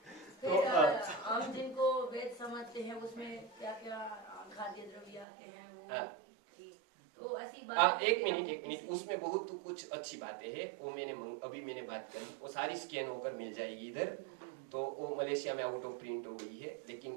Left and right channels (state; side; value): drops out; left; at 5.2 s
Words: फिर हम जिनको वेद समझते हैं उसमें क्या क्या खाद्य द्रव्य आते हैं वो ठीक, तो ऐसी बात। एक मिनट, उसमें बहुत कुछ अच्छी बातें हैं, वो अभी मैंने बात करी, वो सारी स्कैन होकर मिल जाएगी इधर, तो वो मलेशिया में आउट ऑफ प्रिंट हो गई है,